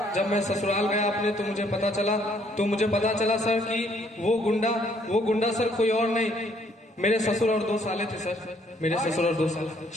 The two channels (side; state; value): both; normal; correlation 0.66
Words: जब मैं ससुराल गया अपने, तो मुझे पता चला सर कि वो गुंडा सर कोई और नहीं, मेरे ससुर और 2 साले थे सर। मेरे ससुर और 2 साल।